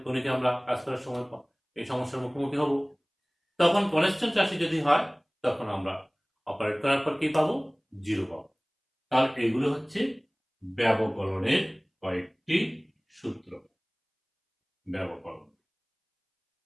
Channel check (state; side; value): identical; both; correlation 1.00